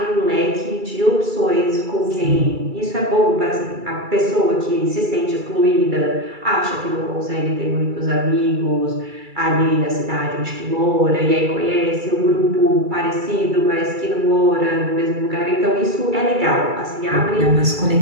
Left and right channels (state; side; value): late; left; 2.3 ms